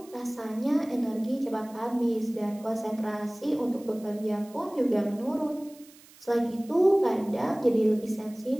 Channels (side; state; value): right; noise; hiss, 24 dB below the sound